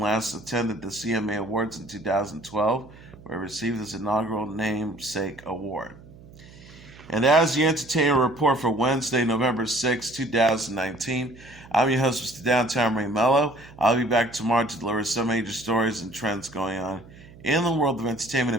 attended the CMA Awards in 2012, where he received his inaugural namesake award. And as the Entertainment Report for Wednesday, November 6, 2019, I'm your host, Mr. Downtown Melo. I'll be back tomorrow to deliver some major stories and trends going on in the world of entertainment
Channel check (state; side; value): noise; right; hum, 21 dB below the sound